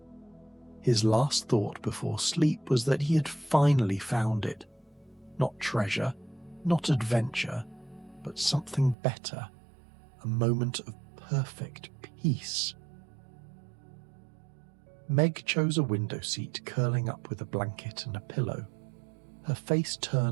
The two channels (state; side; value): drops out; left; at 9.0 s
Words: His last thought before sleep was that he had finally found it. Not treasure, not adventure, but something better, a moment of perfect peace. Meg chose a window seat, curling up with a blanket and a pillow, her face